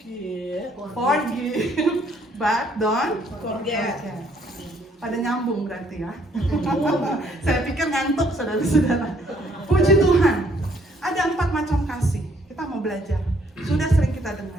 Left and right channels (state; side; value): normal; both; correlation 0.66